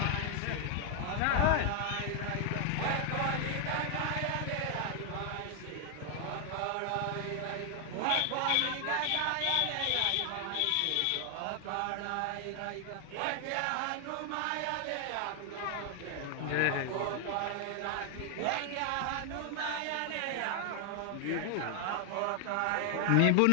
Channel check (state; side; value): different; both; correlation 0.00